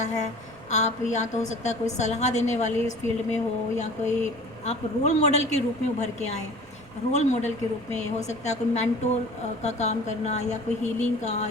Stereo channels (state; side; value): noise; left; rumble, 27 dB below the sound